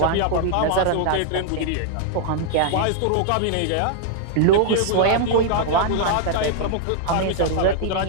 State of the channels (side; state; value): both; different; correlation 0.00